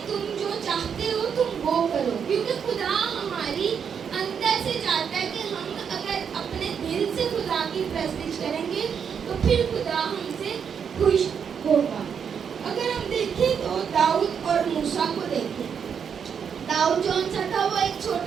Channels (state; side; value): quieter; left; 7.2 dB